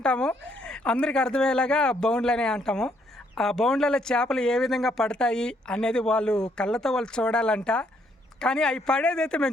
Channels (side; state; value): both; normal; correlation 0.71